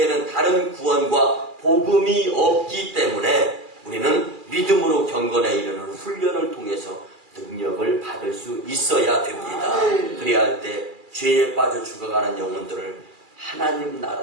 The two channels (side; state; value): left; late; 2.4 ms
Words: 다른 구원과 복음이 없기 때문에 우리는 믿음으로 경건에 이르는 훈련을 통해서 능력을 받을 수 있어야 됩니다. 그래야 할 때 죄에 빠져 죽어가는 영혼들을 하나님